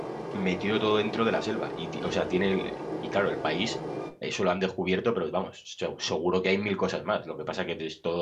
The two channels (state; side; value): identical; both; correlation 1.00